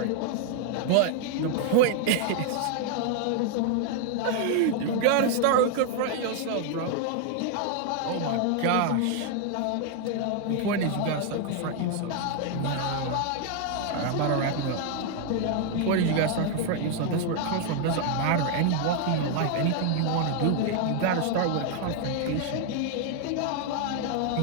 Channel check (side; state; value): both; different; correlation 0.00